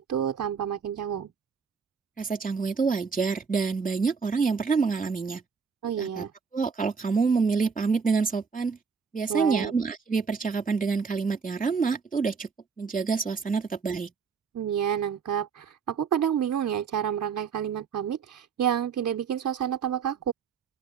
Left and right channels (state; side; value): quieter; left; 5.7 dB